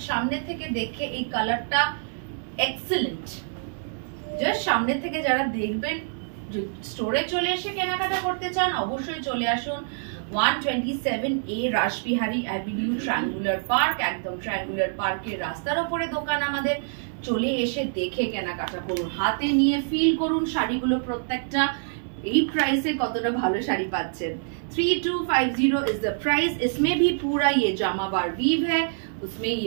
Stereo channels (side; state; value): left; silent; 58 dB below the other